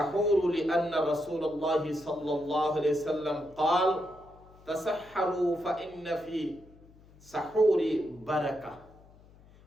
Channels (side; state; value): left; noise; hum, 25 dB below the sound